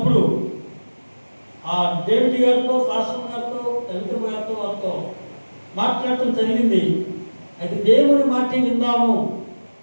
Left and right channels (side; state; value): both; inverted; correlation -1.00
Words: ఆ డేవిడ్ గారితో, పాస్టర్ గారితో, దళిత గారితో వారితో మాట్లాడటం జరిగింది. అయితే దేవుని మాట విందాము